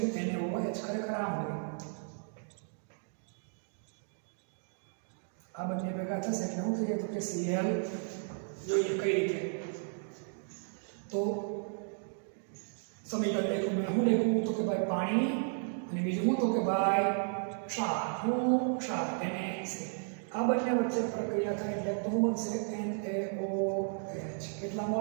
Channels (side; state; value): left; silent; 55 dB below the other